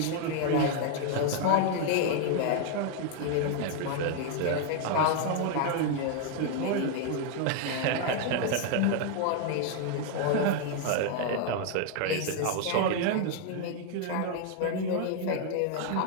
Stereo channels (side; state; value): both; different; correlation 0.00